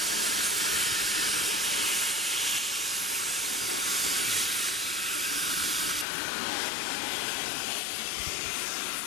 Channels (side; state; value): right; drops out; at 6.1 s